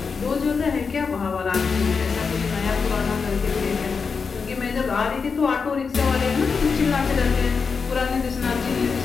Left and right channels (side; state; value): right; quieter; 5.3 dB